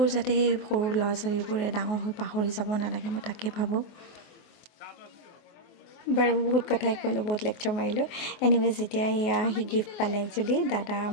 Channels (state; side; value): late; right; 24 ms